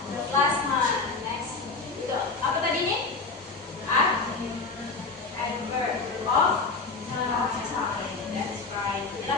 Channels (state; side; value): quieter; right; 4.1 dB